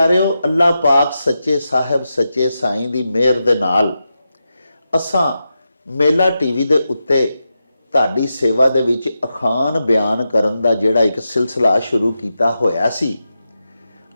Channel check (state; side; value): inverted; both; correlation -0.89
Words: ਅੱਲਾਹ ਪਾਕ ਸੱਚੇ ਸਾਹਿਬ ਸੱਚੇ ਸਾਈਂ ਦੀ ਮਿਹਰ ਦੇ ਨਾਲ ਅਸਾਂ ਮੇਲਾ ਟੀਵੀ ਦੇ ਉੱਤੇ ਤੁਹਾਡੀ ਸੇਵਾ ਦੇ ਵਿੱਚ ਅਖਾਣ ਬਿਆਨ ਕਰਨ ਦਾ ਜਿਹੜਾ ਇੱਕ ਸਿਲਸਿਲਾ ਸ਼ੁਰੂ ਕੀਤਾ ਹੋਇਆ ਸੀ,